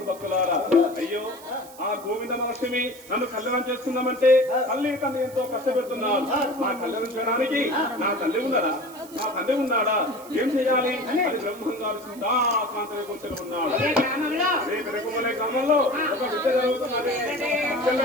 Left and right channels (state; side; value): noise; right; hiss, 20 dB below the sound